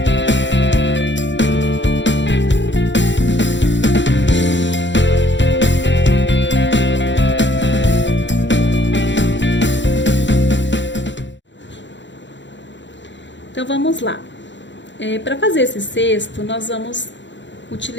Então vamos lá. Para fazer esse cesto, nós vamos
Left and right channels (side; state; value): right; late; 0.53 ms